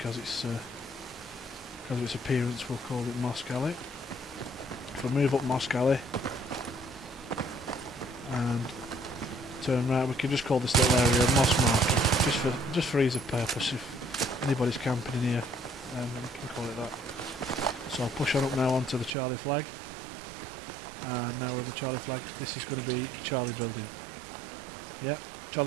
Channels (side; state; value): left; drops out; at 19.1 s